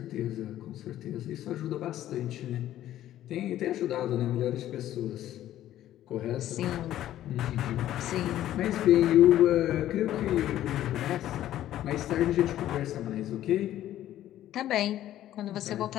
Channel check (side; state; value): right; quieter; 12.8 dB